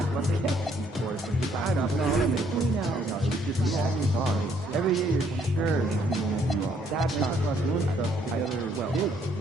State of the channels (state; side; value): normal; both; correlation 0.67